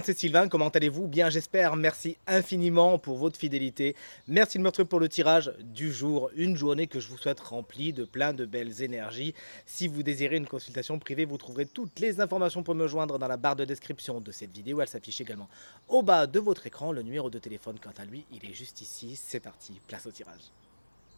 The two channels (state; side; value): inverted; both; correlation -1.00